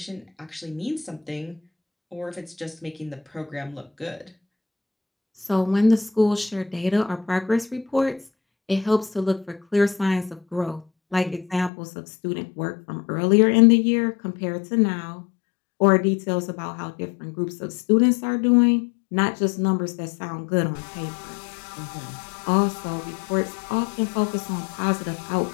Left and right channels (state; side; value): drops out; right; at 11.7 s